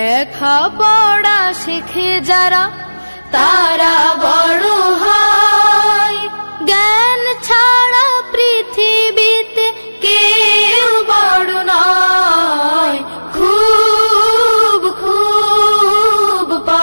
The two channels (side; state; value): both; inverted; correlation -1.00